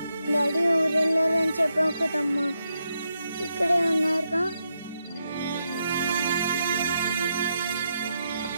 డాడీ ఊరెళ్ళారని చెప్పావు కదమ్మా, ఇక్కడే ఉన్నారుగా.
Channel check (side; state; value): both; inverted; correlation -0.83